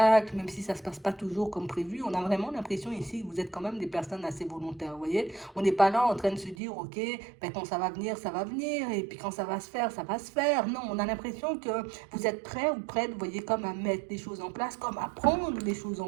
même si ça ne se passe pas toujours comme prévu, on a vraiment l'impression ici que vous êtes quand même des personnes assez volontaires, vous voyez. On n'est pas là en train de se dire, ok, ben quand ça va venir, et puis quand ça va se faire, ça va se faire. Non, on a l'impression que vous êtes prêts ou prêtes, vous voyez, comme à mettre des choses en place, comme à prendre les choses en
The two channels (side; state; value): left; drops out; at 6.6 s